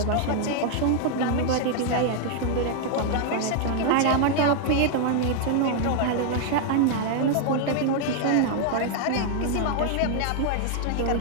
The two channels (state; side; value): different; both; correlation 0.00